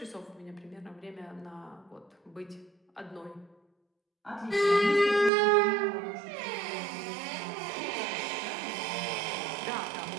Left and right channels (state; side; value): drops out; left; at 5.3 s